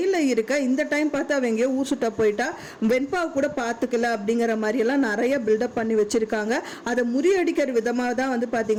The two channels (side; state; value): both; identical; correlation 1.00